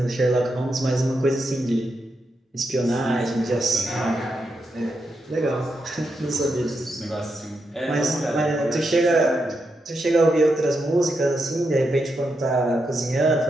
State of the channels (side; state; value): both; normal; correlation 0.84